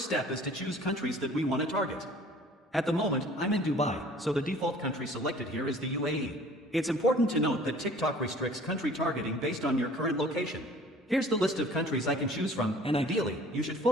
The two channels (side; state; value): both; normal; correlation 0.50